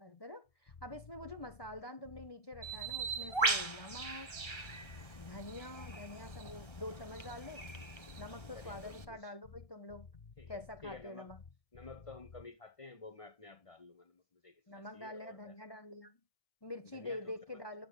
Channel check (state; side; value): late; right; 1.7 ms